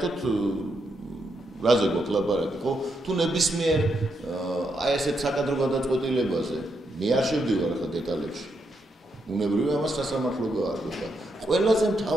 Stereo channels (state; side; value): normal; both; correlation 0.81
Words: რაზე გვაქვს ლაპარაკი, ხო? თუ ნებისმიერ აი ესეთ საკადრო გადაწყვეტილებაზე მე არ შევდივარ ახლა დეტალებში. უნებრივია ამას სასამართლო გაარკვევა. ყველაზე